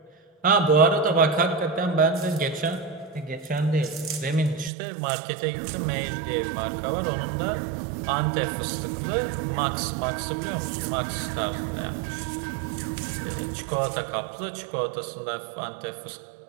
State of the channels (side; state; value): left; drops out; at 4.7 s